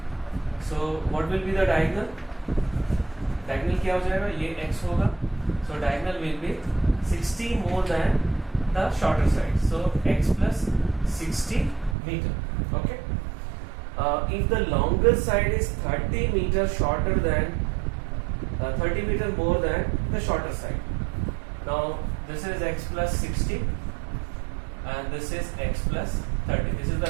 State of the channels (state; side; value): drops out; left; at 12.0 s